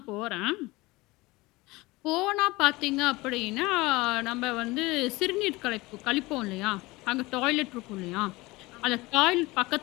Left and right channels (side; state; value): right; quieter; 21.7 dB